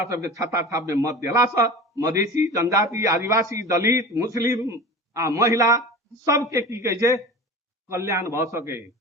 सबके छाता छाप में मत दिला से मधेसी, जनजाति, आदिवासी, दलित, मुस्लिम आ महिला सबके की कहे छै कल्याण भ सके,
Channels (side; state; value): both; normal; correlation 0.34